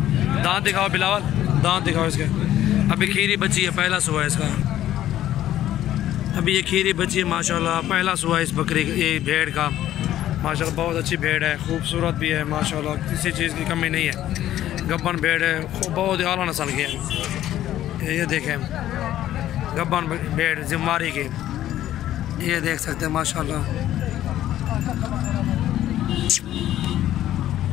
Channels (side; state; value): right; quieter; 12.8 dB